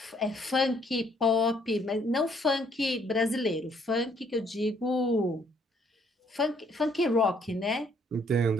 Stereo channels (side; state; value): both; normal; correlation 0.66